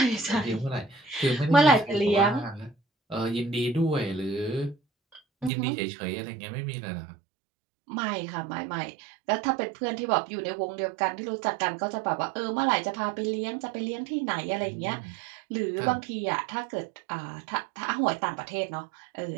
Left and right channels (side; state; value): left; drops out; at 5.5 s